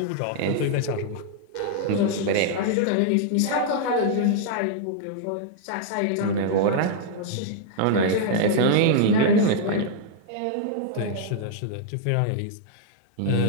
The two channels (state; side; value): different; both; correlation -0.01